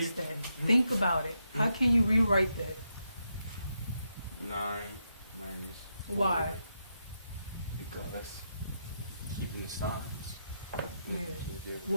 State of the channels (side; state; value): both; inverted; correlation -0.83